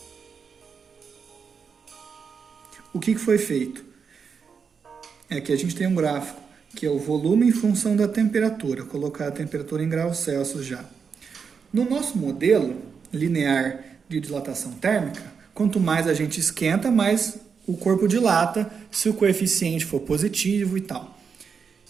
O que foi feito? Que a gente tem um gráfico, que é o volume em função da temperatura. Vou colocar a temperatura em graus Celsius já. No nosso modelo linear de dilatação térmica, quanto mais a gente esquenta, mais o corpo dilata, se o coeficiente for positivo e tal.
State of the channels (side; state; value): left; quieter; 6.0 dB